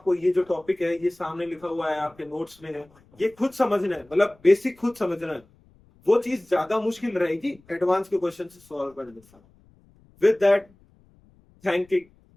ये जो टॉपिक है ये सामने लिखा हुआ है आपके नोट्स में है, ये खुद समझना है, मतलब बेसिक खुद समझना है, वो चीज ज्यादा मुश्किल रहेगी एडवांस के क्वेश्चन से सॉल्व करने से। विद दैट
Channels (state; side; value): noise; left; rumble, 30 dB below the sound